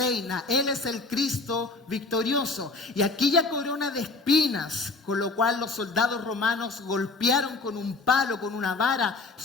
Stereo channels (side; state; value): right; quieter; 3.6 dB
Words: Él es el Cristo victorioso. Y aquella corona de espinas, con lo cual los soldados romanos golpearon con un palo, con una vara,